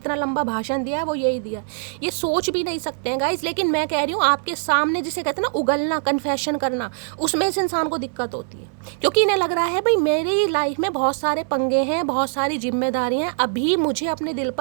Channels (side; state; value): left; silent; 64 dB below the other